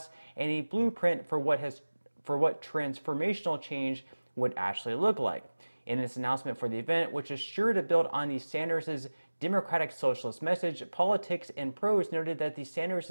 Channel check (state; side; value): inverted; both; correlation -1.00